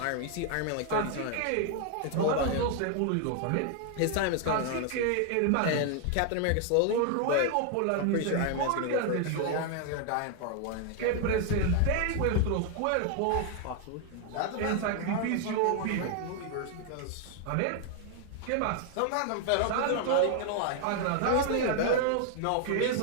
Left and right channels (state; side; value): different; both; correlation 0.00